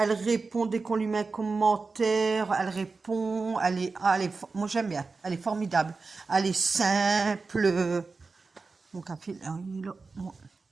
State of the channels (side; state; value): left; quieter; 4.2 dB